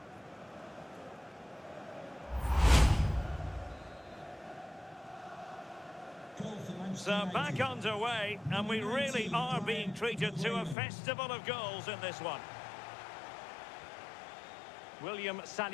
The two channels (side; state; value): right; drops out; at 10.8 s